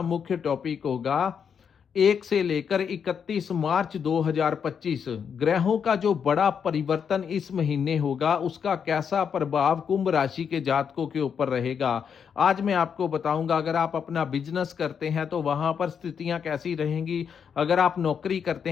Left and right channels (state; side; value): quieter; right; 7.1 dB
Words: मुख्य टॉपिक होगा 1 से लेकर 31 मार्च 2025 ग्रहों का जो बड़ा परिवर्तन इस महीने होगा उसका कैसा प्रभाव कुंभ राशि के जातकों के ऊपर रहेगा। आज मैं आपको बताऊंगा, अगर आप अपना बिजनेस करते हैं तो वहां पर स्थितियां कैसी रहेंगी, अगर आप नौकरी करते